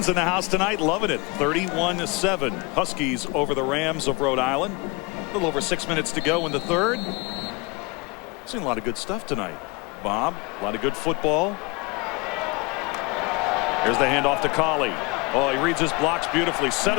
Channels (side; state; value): right; quieter; 26.1 dB